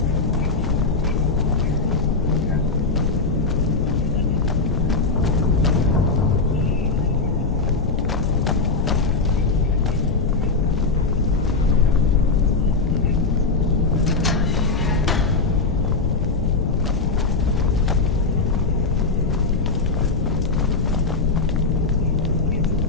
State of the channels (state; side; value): quieter; right; 4.0 dB